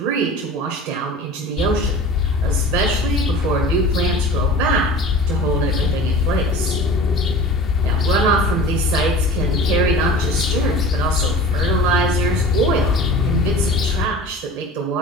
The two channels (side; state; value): both; normal; correlation 0.39